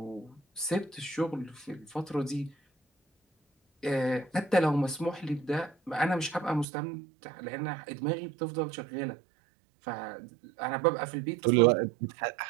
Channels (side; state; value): left; drops out; at 6.7 s